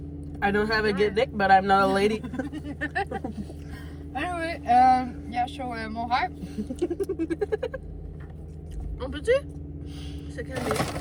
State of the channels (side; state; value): both; identical; correlation 1.00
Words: I don't have a good dick, but I'm not a lady. Anyway, yeah, show mon rêve. On peut-tu se calmer?